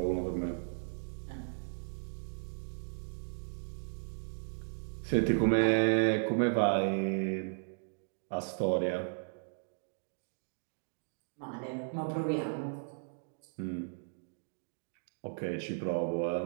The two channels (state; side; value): silent; left; digital silence